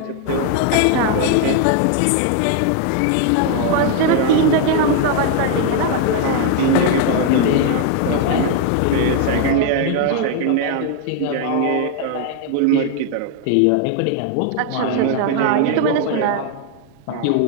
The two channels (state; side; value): different; both; correlation 0.00